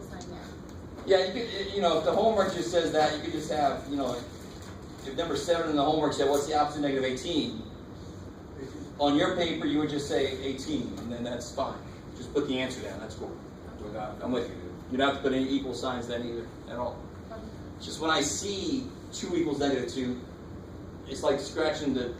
sign there? Yeah, you could, if the homework just says that, you could just have, if number 7 in the homework said, what's the opposite of negative 18? On your paper, you would just say 18, and then that's fine. Just put the answer down, that's cool. I'm with you. You don't have to put any equal signs then either, at all. Just when I see 2 equals negative 2, it's like scratching the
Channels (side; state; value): both; identical; correlation 1.00